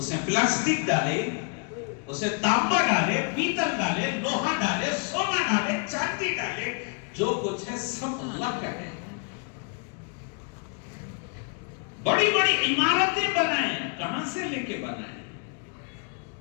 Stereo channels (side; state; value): right; quieter; 38.9 dB